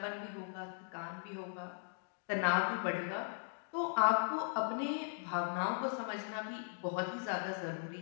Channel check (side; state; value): right; silent; digital silence